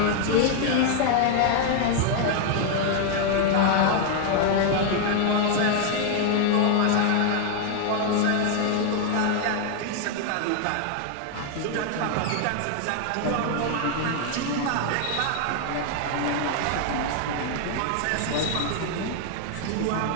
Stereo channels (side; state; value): both; different; correlation 0.00